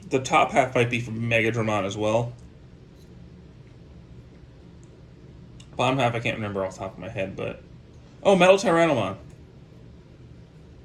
The top half might be from Megadramon as well. Bottom half I can't remember off the top of my head, but... Oh, Metal Tyrannomon.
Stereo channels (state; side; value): identical; both; correlation 1.00